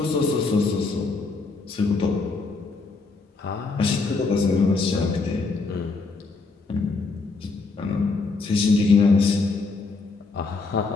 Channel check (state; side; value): quieter; right; 4.0 dB